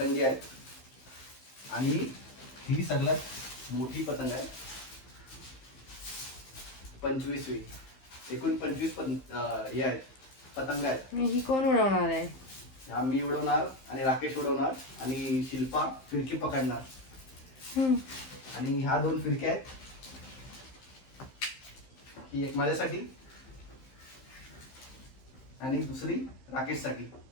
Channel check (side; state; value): right; late; 15 ms